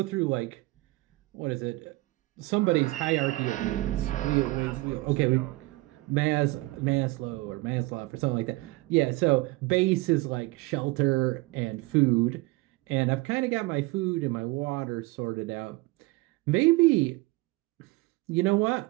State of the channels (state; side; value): quieter; left; 21.8 dB